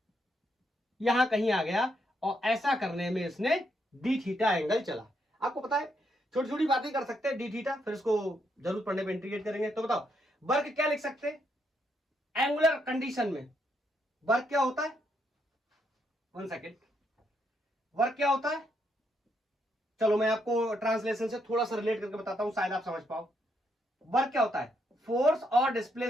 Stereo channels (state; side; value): normal; both; correlation 0.77